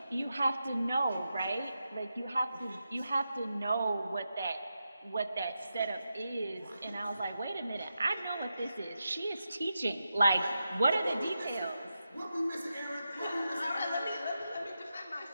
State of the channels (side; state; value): both; inverted; correlation -0.89